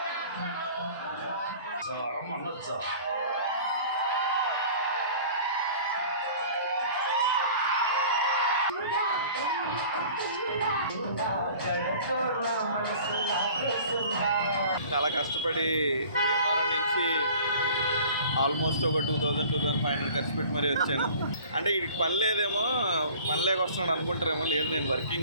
అనొచ్చా? చాలా కష్టపడి భీమవరం నుంచి ఆల్మోస్ట్ ఒక 2,000-2,500 ఖర్చు పెట్టి మరీ వచ్చాను. అంటే వీడికి పని లేదేమో, పని లేక వస్తున్నాడు అనుకుంటారేమో. లేదు, నేను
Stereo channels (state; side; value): inverted; both; correlation -0.46